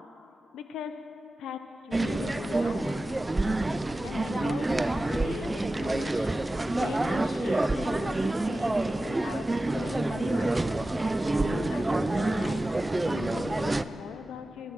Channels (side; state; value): both; normal; correlation 0.95